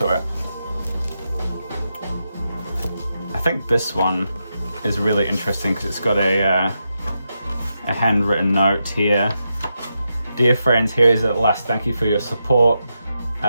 it. I think this one is really interesting because it's got a handwritten note here. Dear friends, here is at last, thank you for your support.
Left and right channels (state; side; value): inverted; both; correlation -0.86